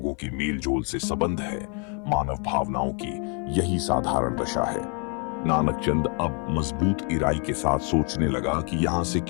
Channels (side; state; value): right; quieter; 37.5 dB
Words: के मेल जोल से संबंध है। मानव भावनाओं की यही साधारण दशा है। नानक चंद अब मजबूत इराई के साथ सोचने लगा कि यहां से